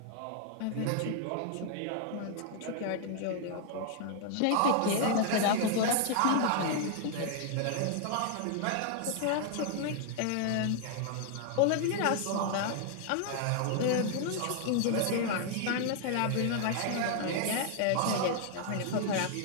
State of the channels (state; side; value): different; both; correlation 0.00